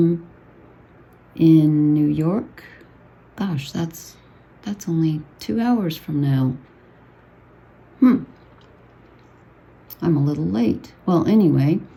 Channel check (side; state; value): both; identical; correlation 1.00